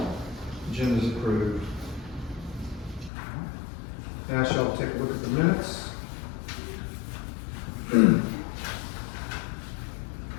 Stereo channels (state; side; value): drops out; right; at 3.1 s